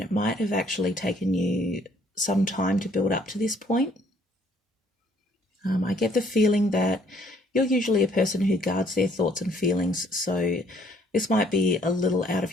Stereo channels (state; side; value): normal; both; correlation 0.63